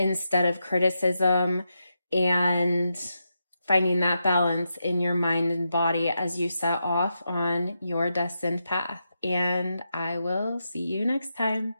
of criticism, and finding that balance in your mind and body as you set off on your destined path. And I will see you next time.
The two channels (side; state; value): both; inverted; correlation -0.86